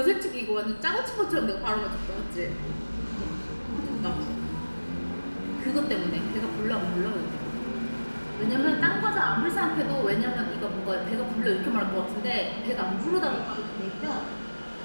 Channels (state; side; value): inverted; both; correlation -1.00